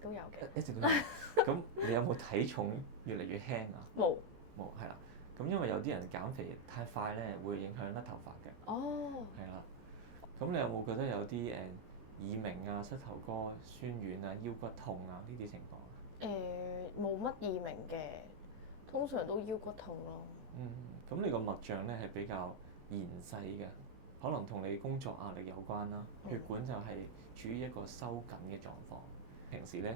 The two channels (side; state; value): left; late; 16 ms